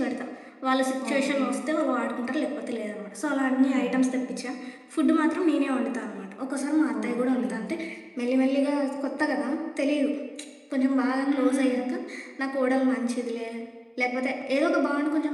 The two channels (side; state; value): both; identical; correlation 1.00